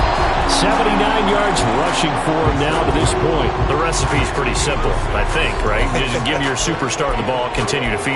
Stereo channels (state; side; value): identical; both; correlation 1.00